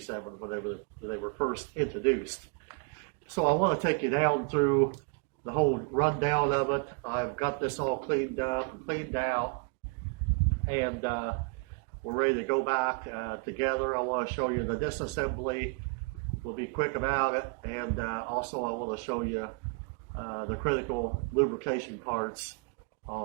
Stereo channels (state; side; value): quieter; left; 34.1 dB